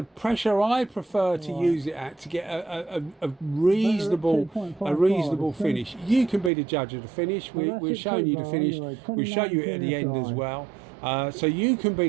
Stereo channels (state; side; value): drops out; left; at 6.5 s